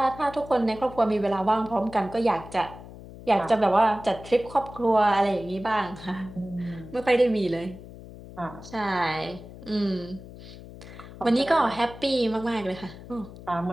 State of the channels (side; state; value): left; noise; hum, 16 dB below the sound